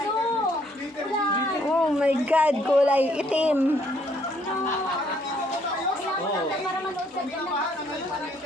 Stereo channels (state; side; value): normal; both; correlation 0.67